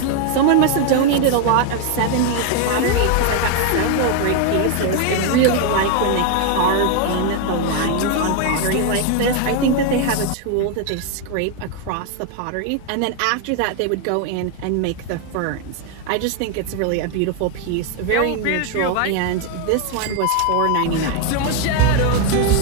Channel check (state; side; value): different; both; correlation 0.01